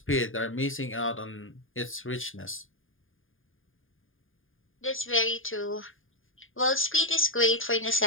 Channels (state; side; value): late; right; 0.59 ms